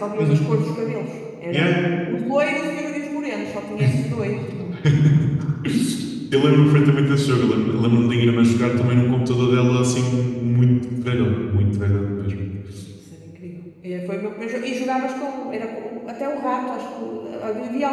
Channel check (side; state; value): both; identical; correlation 1.00